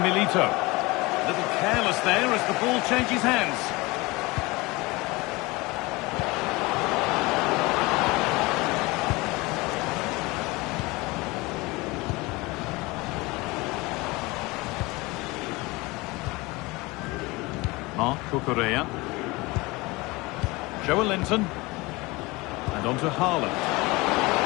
Milito. A little careless there as the ball changes hands. Marc Cucurella. Linton. And on to Haaland.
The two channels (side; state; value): right; quieter; 23.2 dB